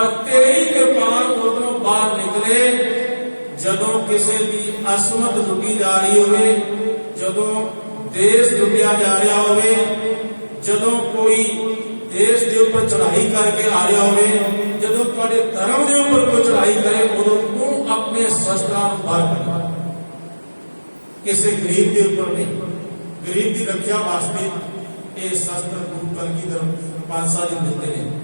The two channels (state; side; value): inverted; both; correlation -1.00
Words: ਤੇਰੀ ਕਿਰਪਾਨ ਉਦੋਂ ਬਾਹਰ ਨਿਕਲੇ ਜਦੋਂ ਕਿਸੇ ਦੀ ਅਸਮਤ ਲੁੱਟੀ ਜਾ ਰਹੀ ਹੋਵੇ, ਜਦੋਂ ਦੇਸ਼ ਲੁੱਟਿਆ ਜਾ ਰਿਹਾ ਹੋਵੇ, ਜਦੋਂ ਕੋਈ ਦੇਸ਼ ਦੇ ਉੱਪਰ ਚੜ੍ਹਾਈ ਕਰਕੇ ਆ ਰਿਹਾ ਹੋਵੇ, ਜਦੋਂ ਤੁਹਾਡੇ ਧਰਮ ਦੇ ਉੱਪਰ ਕੋਈ ਚੜ੍ਹਾਈ ਕਰੇ, ਉਦੋਂ ਤੂੰ ਆਪਣੇ ਸ਼ਸਤਰਾਂ ਨੂੰ ਬਾਹਰ ਕੱਢ। ਕਿਸੇ ਗਰੀਬ ਦੇ ਉੱਪਰ ਨਹੀਂ, ਗਰੀਬ ਦੀ ਰੱਖਿਆ ਵਾਸਤੇ ਇਹ ਸ਼ਸਤਰ ਗੁਰੂ ਕਲਗੀਧਰ ਪਾਤਸ਼ਾਹ ਜੀ ਦਿੰਦੇ ਨੇ।